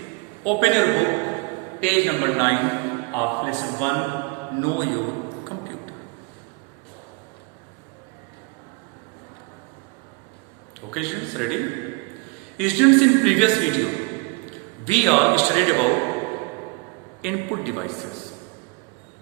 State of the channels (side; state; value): left; quieter; 27.0 dB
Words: open your book, page number 9 of lesson 1, Know Your Computer. Okay students, ready? Students, in previous video, we all studied about input devices.